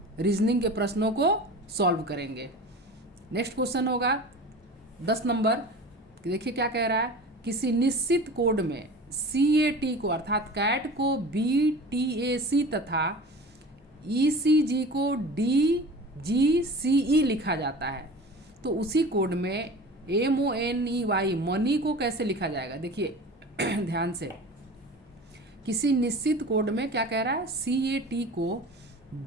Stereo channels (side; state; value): both; normal; correlation 0.37